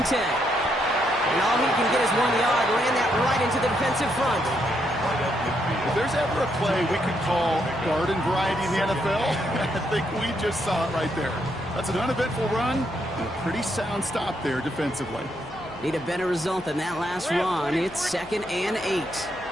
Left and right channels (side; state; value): left; noise; hum, 21 dB below the sound